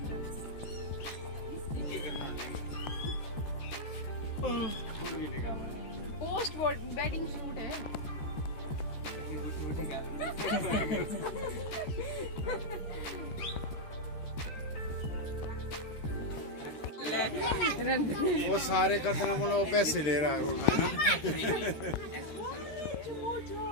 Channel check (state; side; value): late; right; 13 ms